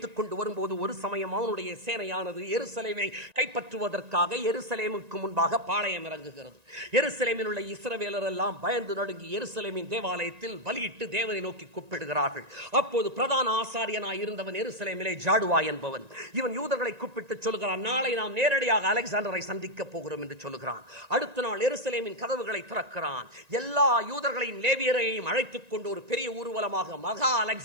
கொண்டு வரும்போது ஒரு சமயம் அவனுடைய சேனையானது எருசலேமை கைப்பற்றுவதற்காக எருசலேமுக்கு முன்பாக பாளையம் இறங்குகிறது. எருசலேமில் உள்ள இஸ்ரவேலர் எல்லாம் பயந்து நடுங்கி எருசலேமின் தேவாலயத்தில் பலியிட்டு தேவனை நோக்கி கூப்பிடுகிறார்கள். அப்போது பிரதான ஆசாரியனாய் இருந்தவன் எருசலேமிலே ஜாடுவா என்பவன், இவன் யூதர்களை கூப்பிட்டு சொல்லுகிறான், நாளை நாம் நேரடியாக அலெக்சாண்டரை சந்திக்க போகிறோம் என்று சொல்லுகிறான். அடுத்த நாள் எருசலேமின் கதவுகளை திறக்கிறான். எல்லா யூதர்களையும் லேவியரையும் அழைத்துக் கொண்டு ஒரு பெரிய ஊர்வலமாக மகா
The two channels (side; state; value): left; late; 1.9 ms